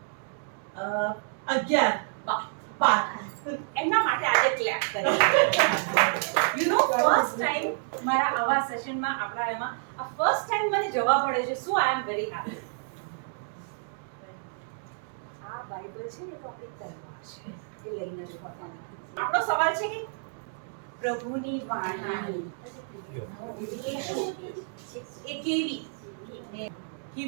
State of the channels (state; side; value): silent; left; digital silence